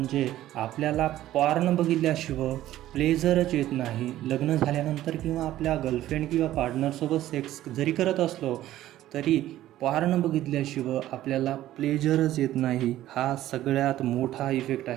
आपल्याला पॉर्न बघितल्याशिवाय प्लेजरच येत नाही. लग्न झाल्यानंतर किंवा आपल्या गर्लफ्रेंड किंवा पार्टनरसोबत सेक्स जरी करत असलो तरी पॉर्न बघितल्याशिवाय आपल्याला प्लेजरच येत नाही. हा सगळ्यात मोठा इफेक्ट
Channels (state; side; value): quieter; left; 13.9 dB